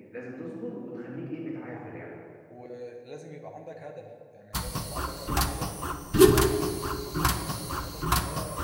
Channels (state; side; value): identical; both; correlation 1.00